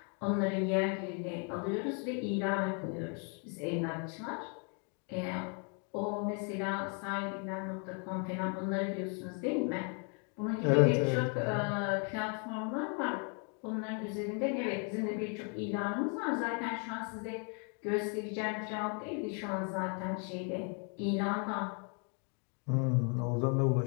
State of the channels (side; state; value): right; quieter; 38.7 dB